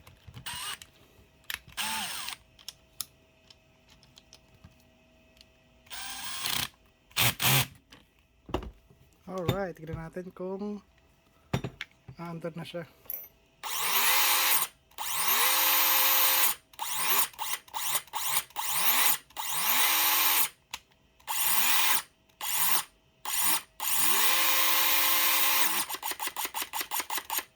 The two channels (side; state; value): both; identical; correlation 1.00